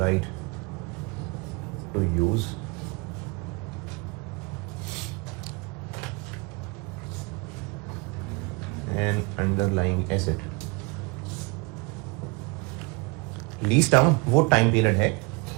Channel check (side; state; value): left; quieter; 27.9 dB